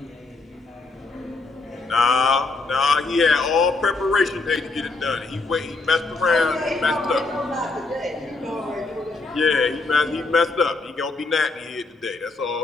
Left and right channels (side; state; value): right; quieter; 3.5 dB